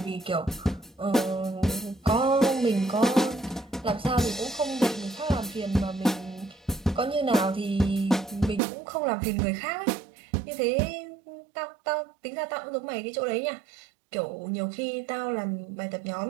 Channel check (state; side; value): drops out; left; at 8.6 s